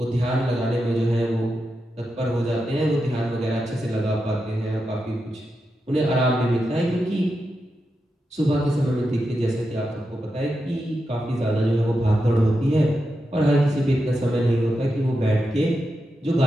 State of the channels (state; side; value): normal; both; correlation 0.88